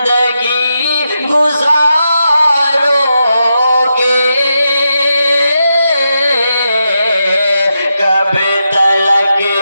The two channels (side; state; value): both; inverted; correlation -0.86